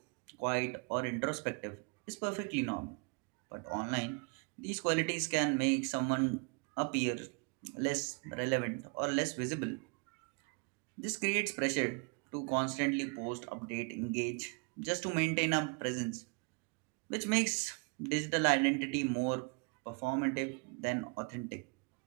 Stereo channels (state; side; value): quieter; left; 34.2 dB